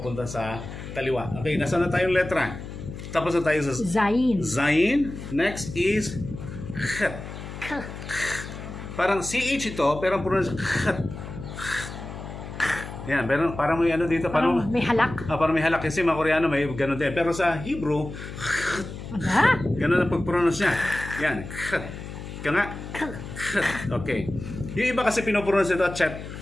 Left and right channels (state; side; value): noise; left; hum, 10 dB below the sound